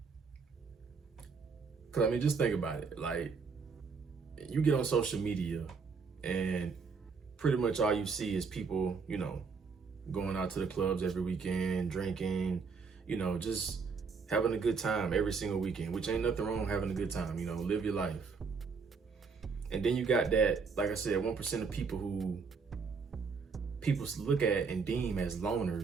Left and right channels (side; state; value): left; quieter; 5.2 dB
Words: I mean, just think about it. Like, you get on social media and pretty much all you see is people, going out to the clubs every weekend, drinking, just having a good time every single weekend, which ain't nothing wrong with having a good time, live your life. And then you got that, like I said, 1% of people who people look at and deem as